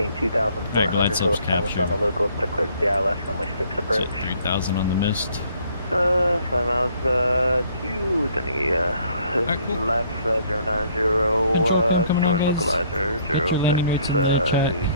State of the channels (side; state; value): both; inverted; correlation -0.62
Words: 2,400 Alright, glide slope's established on captured. the local to clear the ILS runway 6 approach. Set 3,000 on the mist. 5 miles to the cool. left 090, coming on, join guys. localizer Get your landing weights 06, in the check.